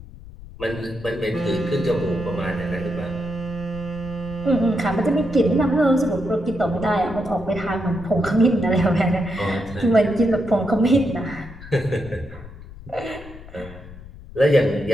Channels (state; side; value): noise; left; rumble, 16 dB below the sound